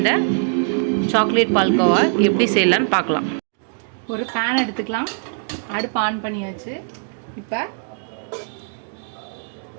சாக்லேட் பால்கோவா எப்படி செய்யலான்னு பார்க்கலாம். ஒரு பேன் எடுத்துக்கலாம். அடுப்பு ஆன் பண்ணியாச்சு. இப்போ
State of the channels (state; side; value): silent; left; digital silence